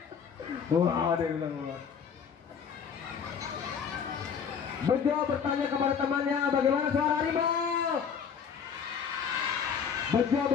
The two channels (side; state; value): right; quieter; 7.0 dB